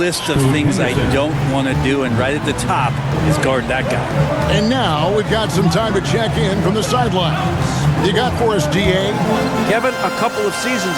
of things I don't want to do, and right at the top is guard that guy. And now we've got some time to check in from the sidelines. You got for us, DA? Kevin, a couple of seasons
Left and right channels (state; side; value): identical; both; correlation 1.00